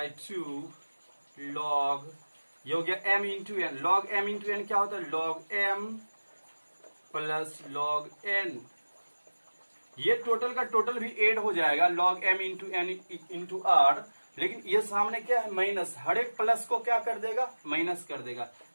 log, ये हो गया m into n. Log m into n क्या होता है, log m plus log n। ये टोटल का टोटल भी एड हो जाएगा log m into n into r, लेकिन ये सामने क्या है माइनस, हर एक प्लस को क्या कर देगा, माइनस कर देगा।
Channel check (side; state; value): both; inverted; correlation -1.00